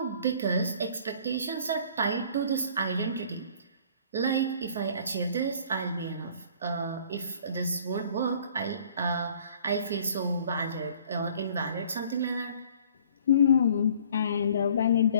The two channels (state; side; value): inverted; both; correlation -0.53